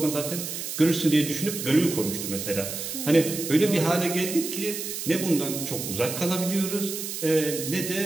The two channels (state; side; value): noise; right; hiss, 6 dB below the sound